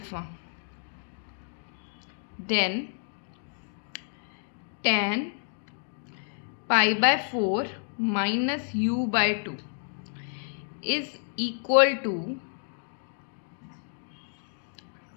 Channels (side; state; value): right; silent; 58 dB below the other